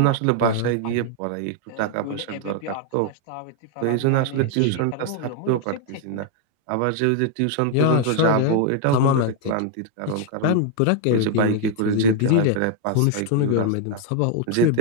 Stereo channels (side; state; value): both; different; correlation 0.01